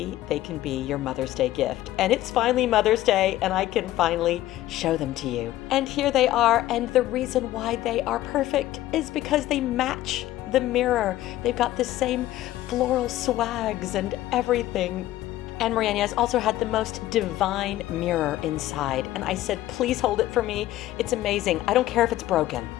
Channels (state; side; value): quieter; right; 14.8 dB